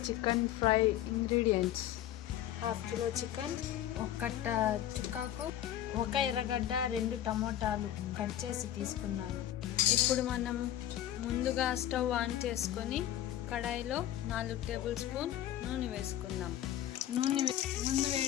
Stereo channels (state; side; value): quieter; right; 12.1 dB